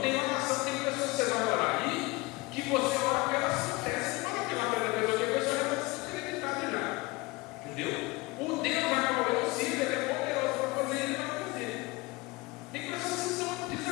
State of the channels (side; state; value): right; quieter; 23.3 dB